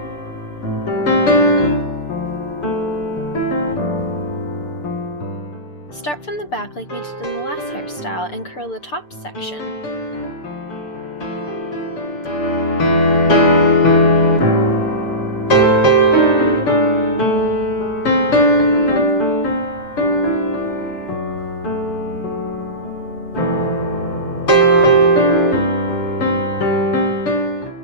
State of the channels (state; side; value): late; right; 6.8 ms